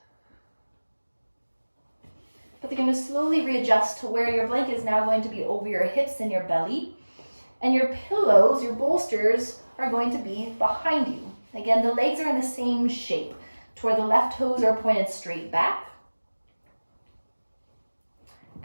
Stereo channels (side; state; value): both; inverted; correlation -1.00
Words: But they're going to slowly readjust to where your blanket is now going to be over your hips and your belly. And your pillows, your bolsters, are going to be behind you. Again, the legs are in the same shape, to where the left toes are pointed straight back.